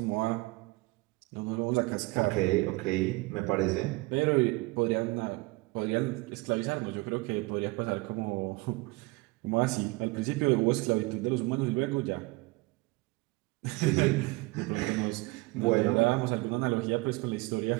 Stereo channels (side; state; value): left; quieter; 23.8 dB